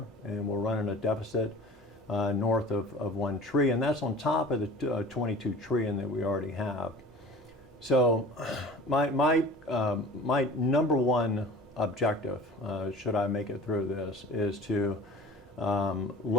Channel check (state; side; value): normal; both; correlation 0.42